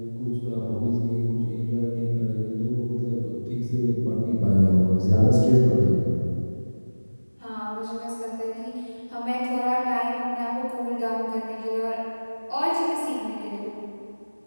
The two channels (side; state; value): both; inverted; correlation -1.00